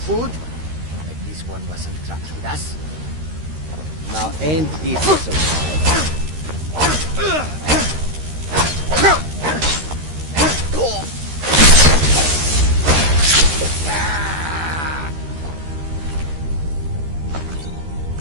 Like this one wasn't trapped with us. Now ain't this so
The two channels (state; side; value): late; left; 13 ms